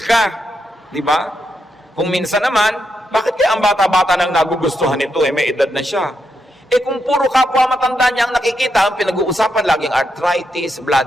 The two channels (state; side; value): normal; both; correlation 0.83